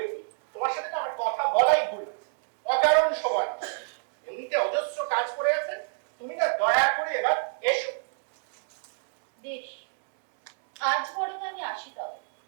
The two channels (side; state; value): left; silent; digital silence